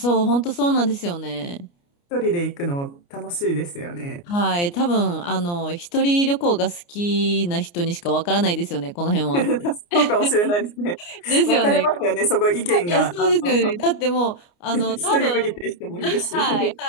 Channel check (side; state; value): right; late; 29 ms